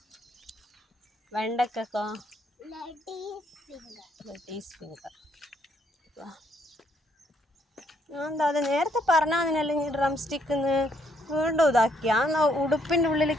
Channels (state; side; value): normal; both; correlation 0.71